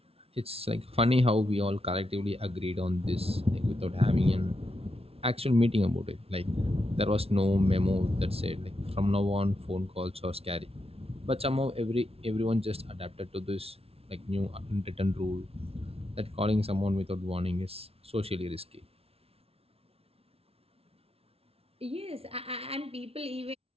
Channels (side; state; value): left; late; 0.29 ms